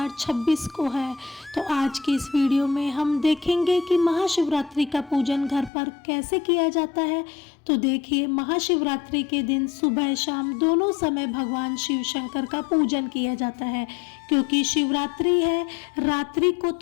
को है। तो आज की इस वीडियो में हम देखेंगे कि महाशिवरात्रि का पूजन घर पर कैसे किया जाता है। तो देखिए, महाशिवरात्रि के दिन सुबह शाम दोनों समय भगवान शिव शंकर का पूजन किया जाता है, क्योंकि शिवरात्रि है। रात्रि को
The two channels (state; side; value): drops out; right; at 5.7 s